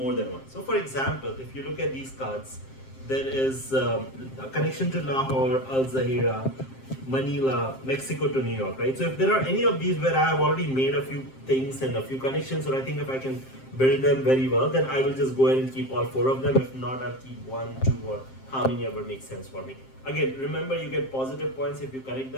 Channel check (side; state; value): right; late; 7.6 ms